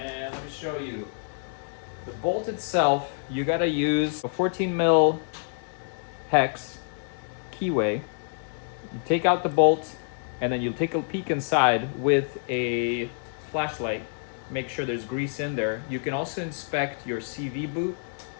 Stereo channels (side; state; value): right; silent; digital silence